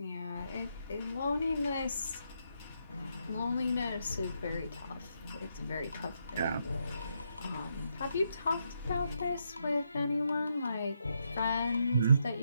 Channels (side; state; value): both; inverted; correlation -0.80